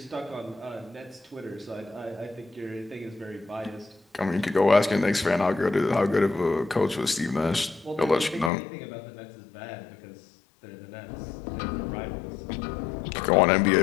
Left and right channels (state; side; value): drops out; right; at 8.5 s